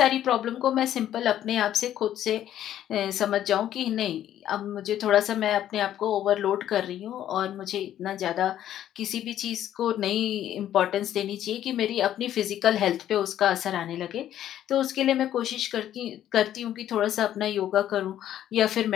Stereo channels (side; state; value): right; quieter; 11.5 dB